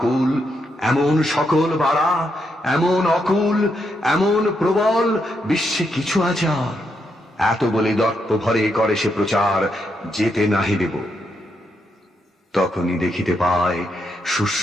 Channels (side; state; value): both; normal; correlation 0.80